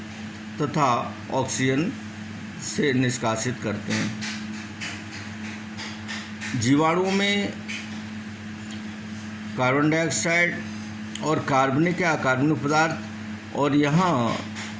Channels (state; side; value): identical; both; correlation 1.00